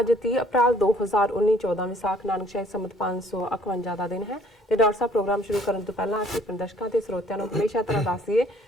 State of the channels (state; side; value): normal; both; correlation 0.59